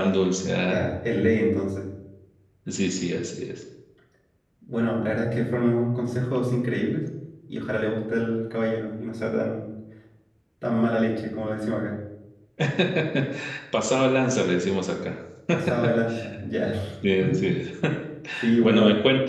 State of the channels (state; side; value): identical; both; correlation 1.00